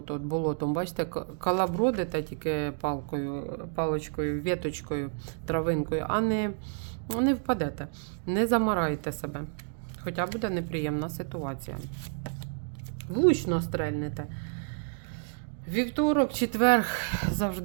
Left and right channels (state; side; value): silent; left; 58 dB below the other